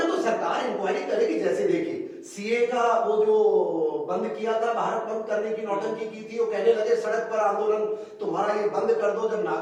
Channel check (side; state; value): both; identical; correlation 1.00